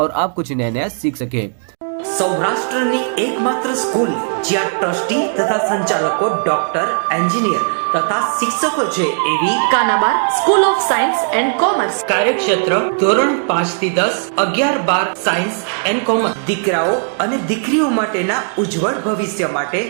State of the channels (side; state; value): left; silent; 68 dB below the other